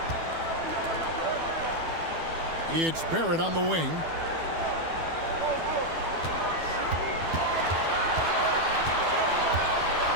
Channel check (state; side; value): late; left; 12 ms